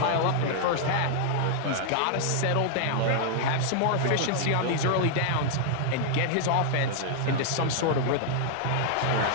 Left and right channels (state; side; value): different; both; correlation -0.01